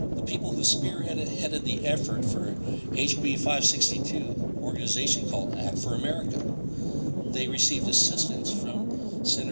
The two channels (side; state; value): both; inverted; correlation -1.00